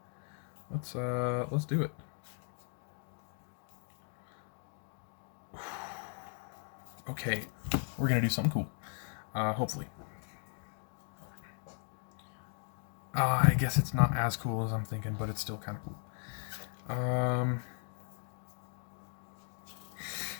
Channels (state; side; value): silent; right; 53 dB below the other